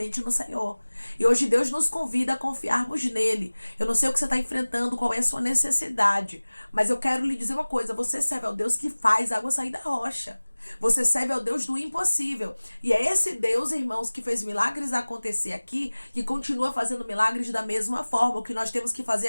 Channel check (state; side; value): inverted; both; correlation -1.00